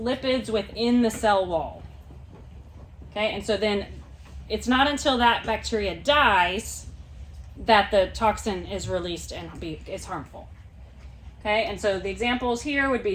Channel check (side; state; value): both; identical; correlation 1.00